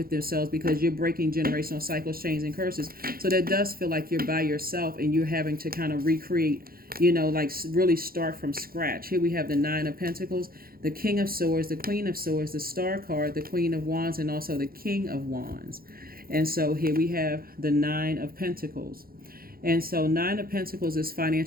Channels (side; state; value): left; late; 0.43 ms